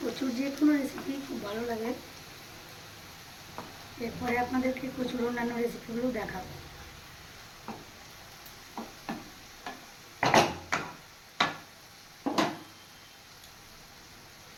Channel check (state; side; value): identical; both; correlation 1.00